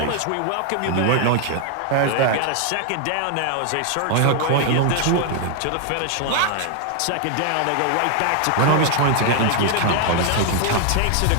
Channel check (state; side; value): different; both; correlation 0.00